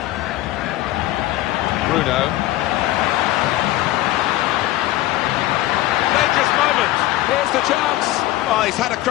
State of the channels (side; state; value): right; quieter; 16.0 dB